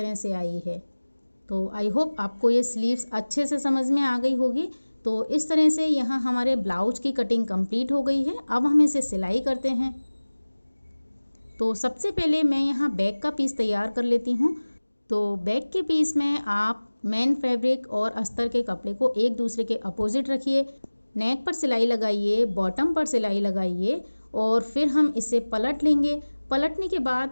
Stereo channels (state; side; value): inverted; both; correlation -1.00